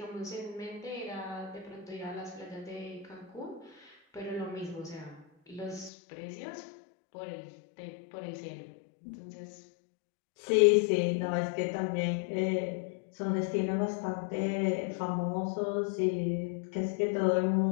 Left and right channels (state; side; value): drops out; right; at 5.9 s